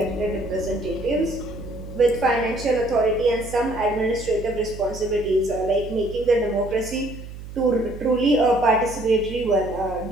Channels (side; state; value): right; noise; hum, 13 dB below the sound